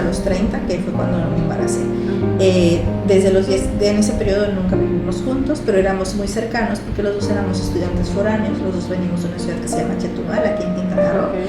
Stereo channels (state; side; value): identical; both; correlation 1.00